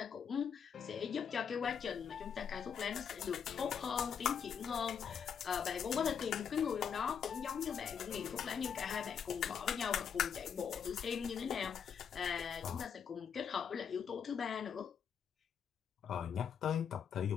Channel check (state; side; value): quieter; right; 7.3 dB